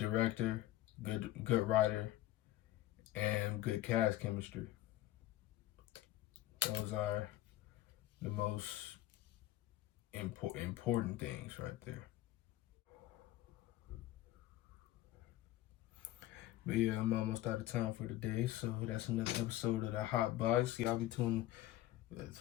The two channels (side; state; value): right; quieter; 14.9 dB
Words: good writer, and good cast chemistry. Those are the most important things right there. But yeah, I'm almost out of time for today, so that's another episode of the Hotbox. Y'all be tuning as